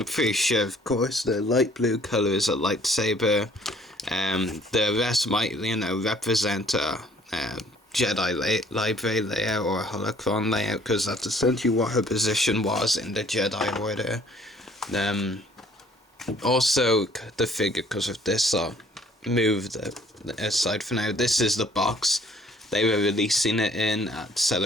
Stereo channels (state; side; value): normal; both; correlation 0.58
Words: pretty sure, of course, the light blue colour is a lightsaber. The rest might, you know, represent a Jedi library layout or a holocron layout, because that's essentially what her position was in the Jedi Order. Also, the figure, because of this, I'll move the aside for now. This is the box they were releasing it in at